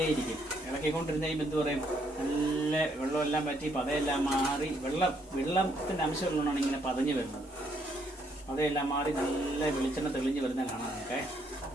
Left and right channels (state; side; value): normal; both; correlation 0.71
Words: ഇളക്കിക്കൊണ്ടിരുന്ന് കഴിയുമ്പോൾ എന്ത് പറയും? നല്ല വെള്ളമെല്ലാം പറ്റി പതയെല്ലാം മാറി വെള്ളത്തിൻ്റെ അംശമുള്ളതാണ് ഇങ്ങനെ പതഞ്ഞ് വരുന്നത്. പതയെല്ലാം മാറി നല്ല വെളിച്ചെണ്ണ തെളിഞ്ഞ് വരുന്ന കാണാനൊക്കെ.